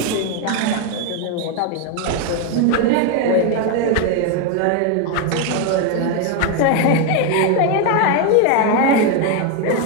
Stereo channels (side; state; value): both; different; correlation 0.01